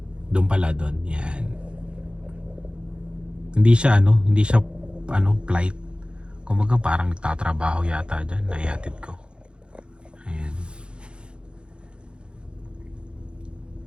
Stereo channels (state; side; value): late; left; 0.055 ms